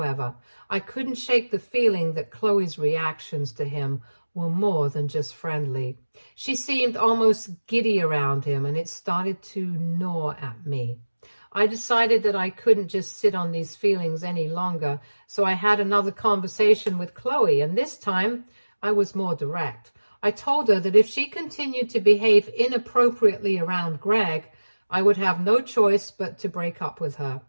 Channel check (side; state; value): both; inverted; correlation -1.00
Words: I couldn't shake the feeling that Chloe's reactions to him were more than just friendly. She seemed almost giddy around him, and it started to gnaw at me. I decided that I couldn't just sit on these feelings any longer, so I had another conversation with Chloe, and this time I was more direct. I told her that if she continued to behave inappropriately around Greg, I would have no choice but to break up with her.